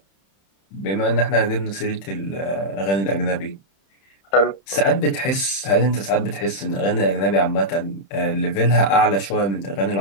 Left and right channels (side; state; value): right; late; 31 ms